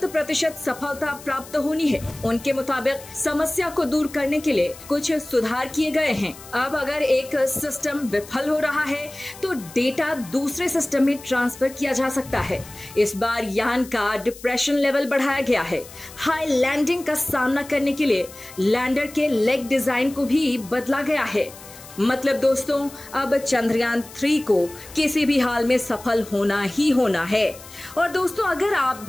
सफलता प्राप्त होनी है। उनके मुताबिक समस्या को दूर करने के लिए कुछ सुधार किए गए हैं। अब अगर एक सिस्टम विफल हो रहा है तो डेटा दूसरे सिस्टम में ट्रांसफर किया जा सकता है। इस बार यान का डिप्रेशन लेवल बढ़ाया गया है। हाई लैंडिंग का सामना करने के लिए लैंडर के लेग डिजाइन को भी बदला गया है। मतलब दोस्तों, अब चंद्रयान 3 को किसी भी हाल में सफल होना ही होना है। और दोस्तों, अगर आप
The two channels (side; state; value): left; noise; hiss, 18 dB below the sound